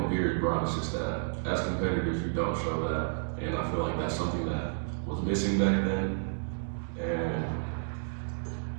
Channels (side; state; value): left; silent; digital silence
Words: fears Bron. It's just that as competitors, you don't show that. And I feel like that's something that was missing back then. And